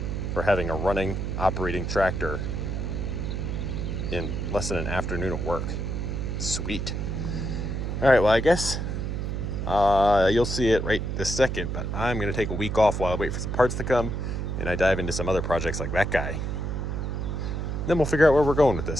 for having a running, operating tractor in less than an afternoon at work. Sweet. All right, well, I guess you'll see it right this second, but I'm going to take a week off while I wait for some parts to come and I dive into some other projects like that guy. Then we'll figure out where we're going with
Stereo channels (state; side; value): noise; right; hum, 2 dB below the sound